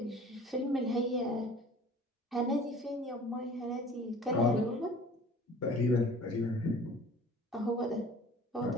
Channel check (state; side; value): normal; both; correlation 0.46